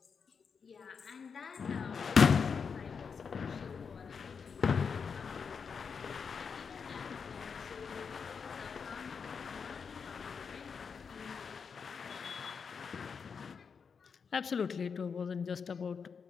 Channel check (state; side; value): quieter; right; 6.0 dB